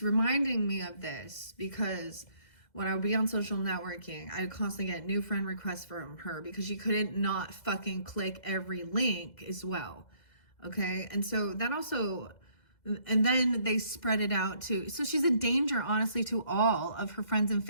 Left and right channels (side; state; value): right; late; 2.0 ms